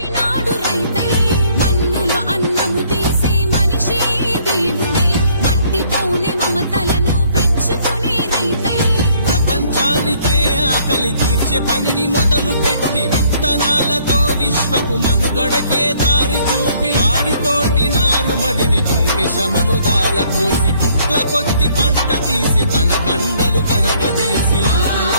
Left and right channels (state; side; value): inverted; both; correlation -0.63